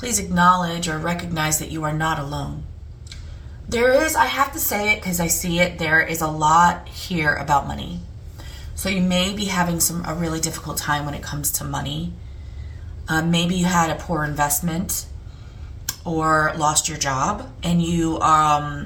please acknowledge or recognize that you are not alone. There is, I have to say it because I see it, there is a lot here about money. So you may be having a really difficult time when it comes to money. Maybe you had a poor investment or lost your job, and you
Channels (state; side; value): identical; both; correlation 1.00